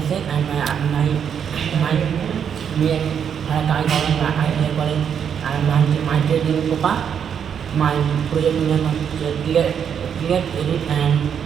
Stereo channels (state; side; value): quieter; left; 7.9 dB